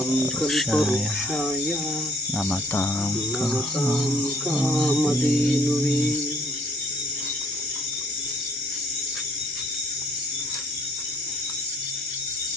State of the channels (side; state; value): both; normal; correlation 0.61